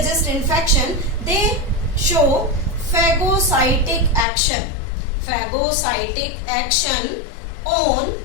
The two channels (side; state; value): right; drops out; at 4.2 s